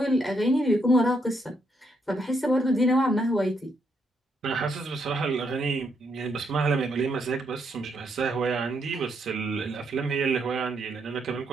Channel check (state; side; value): normal; both; correlation 0.76